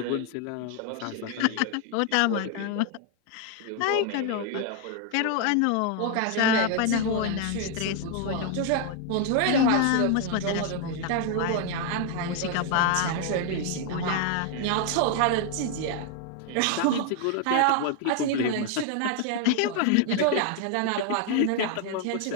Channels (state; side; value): different; both; correlation 0.00